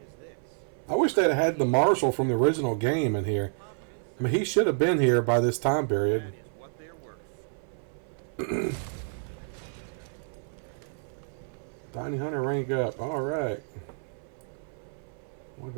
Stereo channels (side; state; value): left; silent; 58 dB below the other